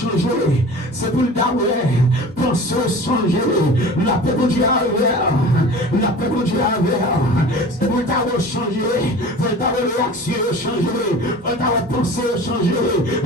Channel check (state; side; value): normal; both; correlation 0.39